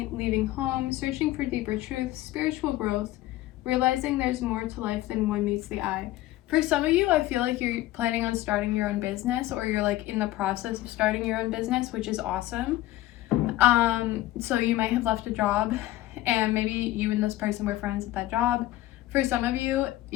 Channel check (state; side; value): quieter; right; 15.9 dB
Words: leaving home, searching for deeper truth, spiritual growth, realizing there's more to life than one meets the eye. For some of you, I feel like you're planning on starting your own business, or you're like in the process of starting your own business, which is awesome. So you might have left a job and maybe you and this person were friends at that job. For some of you,